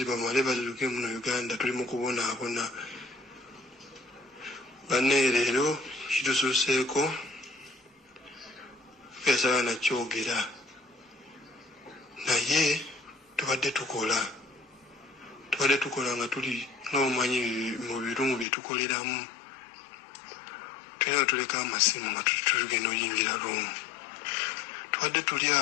bamale bazuke muno Uganda tuli mu kubonaabona. Banne leero kitususeeko yasaba nakyogera naye tubadde tukola nga tuli n'omumanyi mu birumu bye tukoleramu. Tulina tuleka amasimu nga tugenda oyingira ruumu. Tubadde tuli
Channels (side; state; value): right; drops out; at 18.4 s